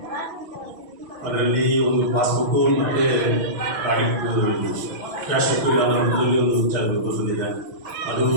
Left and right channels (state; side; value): late; left; 6.2 ms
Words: ಅದರಲ್ಲಿ ಒಂದು ಪಾಸ್ಬುಕ್ಕು ಮತ್ತು ಕ್ಯಾಶ್ ಬುಕ್ ಅನ್ನೋದ್ರಲ್ಲಿ ಒಂದು ವಿಚಾರ ಬಂದಿದೆ. ಅದು